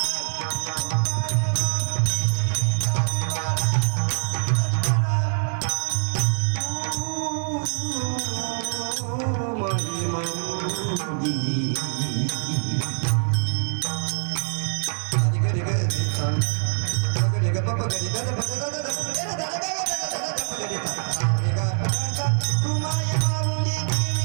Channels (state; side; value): silent; left; digital silence